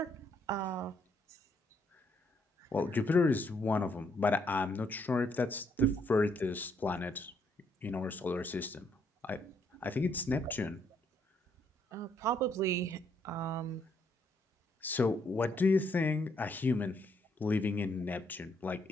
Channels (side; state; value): both; normal; correlation 0.72